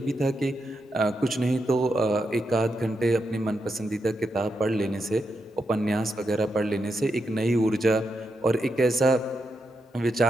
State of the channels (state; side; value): normal; both; correlation 0.84